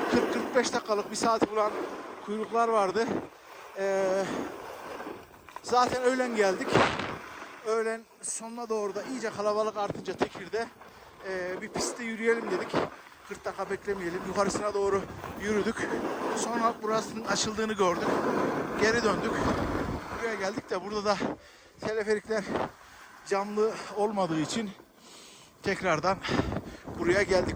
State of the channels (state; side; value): identical; both; correlation 1.00